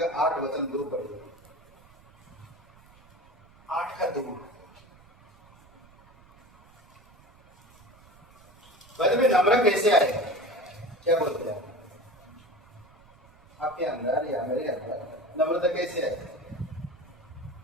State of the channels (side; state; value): right; noise; rumble, 27 dB below the sound